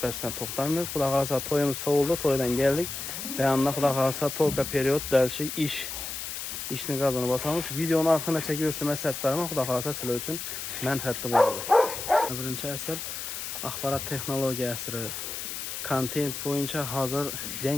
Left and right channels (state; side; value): noise; left; hiss, 6 dB below the sound